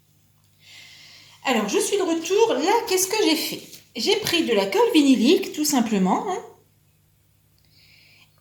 Alors je suis de retour, là qu'est-ce que j'ai fait? J'ai pris de la colle vinylique tout simplement, hein,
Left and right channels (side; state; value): both; identical; correlation 1.00